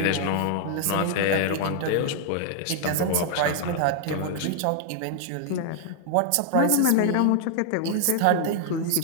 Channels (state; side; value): different; both; correlation 0.00